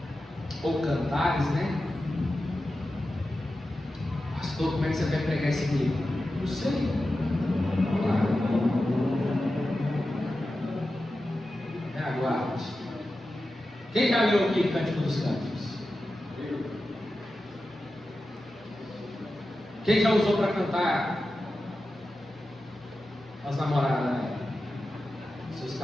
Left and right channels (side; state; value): both; normal; correlation 0.92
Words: ou Cantares, né? Pastor, como é que você vai pregar esse livro? Não sei. Aguarde. Quem já leu aqui Cântico dos Cânticos? Quem já usou para cantar as namoradas, né? Seus